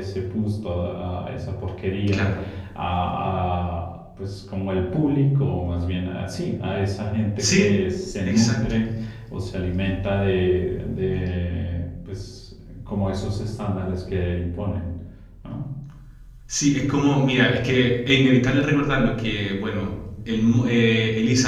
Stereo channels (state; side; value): identical; both; correlation 1.00